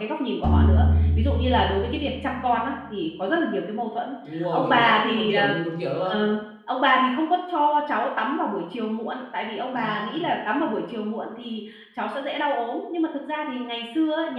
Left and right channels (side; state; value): both; identical; correlation 1.00